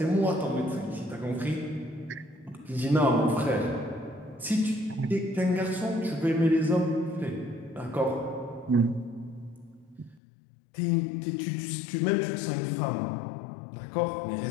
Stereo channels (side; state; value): right; drops out; at 10.2 s